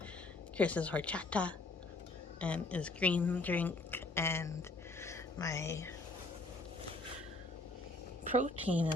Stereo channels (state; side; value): quieter; right; 3.1 dB